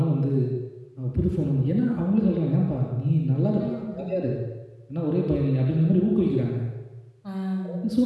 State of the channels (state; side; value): identical; both; correlation 1.00